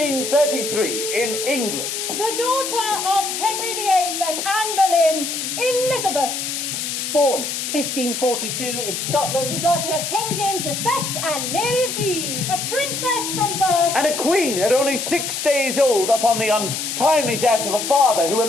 in England. The daughter of Henry VIII and Anne Boleyn, Elizabeth. Born 1542 in Scotland. The daughter of King James V and Mary of Guise. A princess from birth. And a queen at only 6 days old upon the untimely death of a father who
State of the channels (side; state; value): left; noise; hiss, 3 dB below the sound